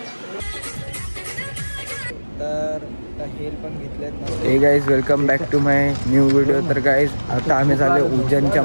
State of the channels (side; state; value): both; inverted; correlation -1.00